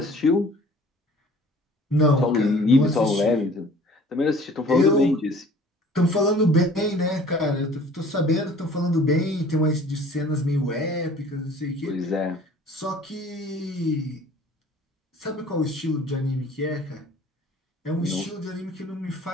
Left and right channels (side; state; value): both; normal; correlation 0.50